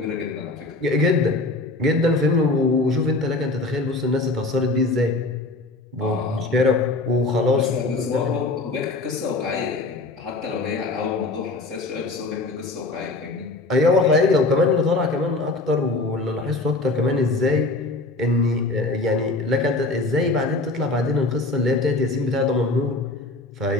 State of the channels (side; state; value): right; quieter; 3.1 dB